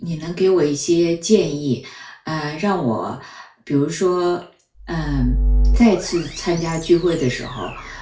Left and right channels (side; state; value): both; identical; correlation 1.00